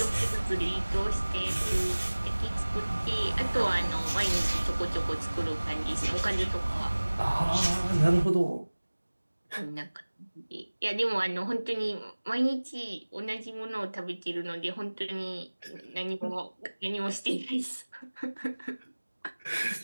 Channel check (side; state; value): both; inverted; correlation -1.00